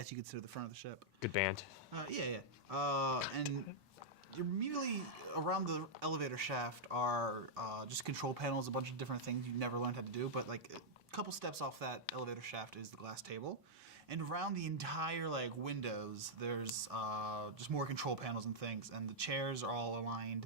you could consider the front of the ship. Good band. Yeah. And immediately around the elevator shaft are just control panels, a bunch of different things you never learned how to do. But like a couple steps off that elevator shaft is the glass table, and around the entire like windows, there's just more control panels and things. And the chairs are all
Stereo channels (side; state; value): both; normal; correlation -0.08